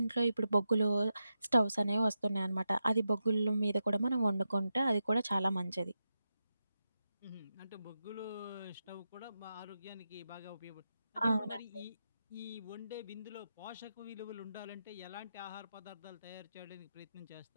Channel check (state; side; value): inverted; both; correlation -0.88